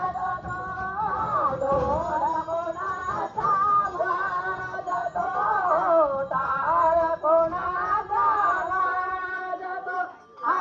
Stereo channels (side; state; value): both; identical; correlation 1.00